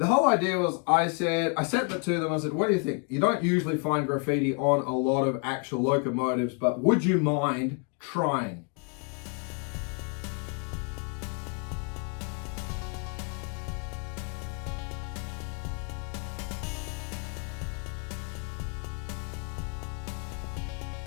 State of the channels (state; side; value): quieter; right; 37.1 dB